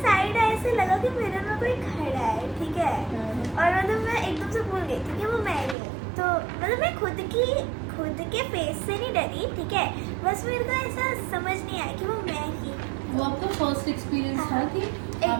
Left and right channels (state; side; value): drops out; left; at 5.8 s